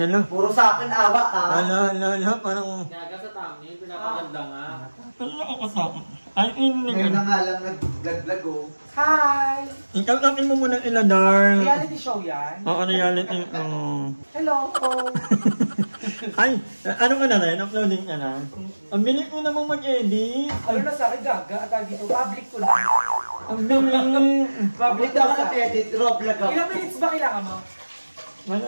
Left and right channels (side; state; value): both; inverted; correlation -1.00